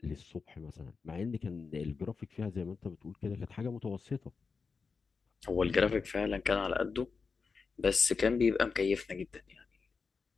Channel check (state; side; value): quieter; right; 4.9 dB